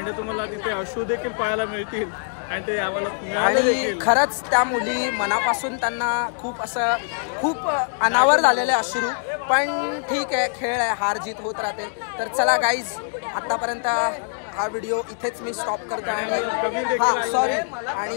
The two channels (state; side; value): silent; right; digital silence